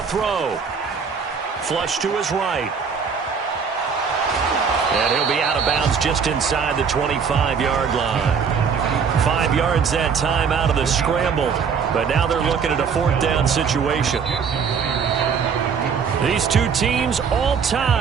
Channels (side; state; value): left; quieter; 6.2 dB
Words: throw. Flush to his right. And he'll be out of bounds just inside the 25-yard line. 5 yards that time out of the scramble. But now they're looking at a 4th down situation. These two teams all